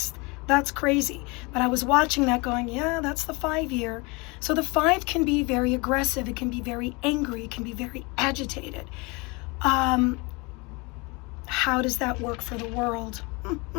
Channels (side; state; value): right; quieter; 27.4 dB